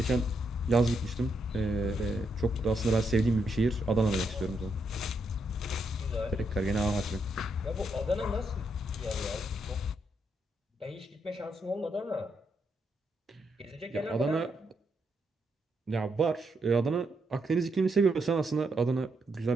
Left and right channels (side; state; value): both; normal; correlation 0.79